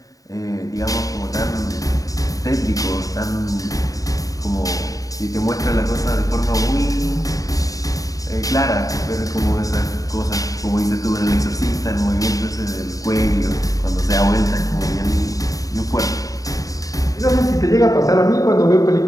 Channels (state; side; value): late; right; 0.17 ms